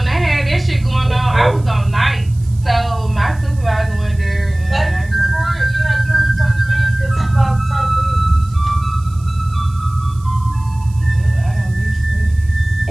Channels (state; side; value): noise; right; hiss, 26 dB below the sound